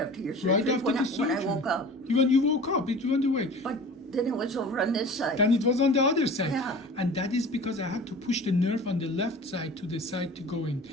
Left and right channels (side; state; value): both; normal; correlation 0.40